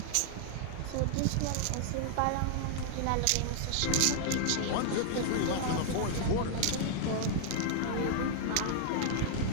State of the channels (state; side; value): different; both; correlation 0.00